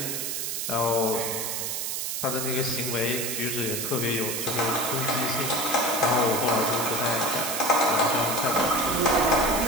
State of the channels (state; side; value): noise; right; hiss, 2 dB below the sound